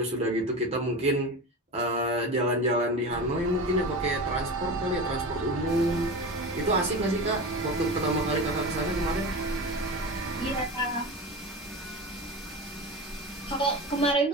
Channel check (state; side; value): normal; both; correlation 0.27